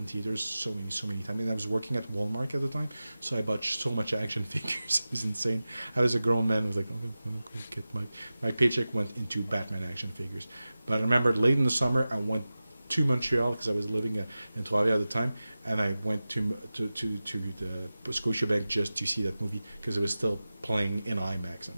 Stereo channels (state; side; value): inverted; both; correlation -0.96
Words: theaters so many times. And I was working at Walmart at the time, so I bought so much action figures. It was insane. I was a grown man. I was like, okay, get my paycheck went into Batman action figures. But I remember late in the summer, I went to Montreal because I was living in Trois-Rivières at the time, and I went to the Scotiabank just to see that movie because it was still playing in IMAX, and it